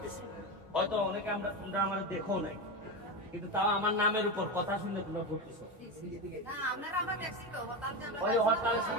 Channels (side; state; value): both; normal; correlation 0.17